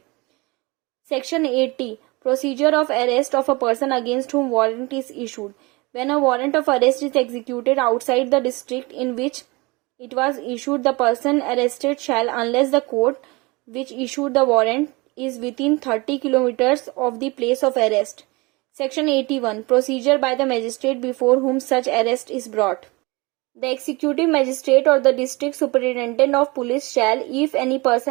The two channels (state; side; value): quieter; left; 25.2 dB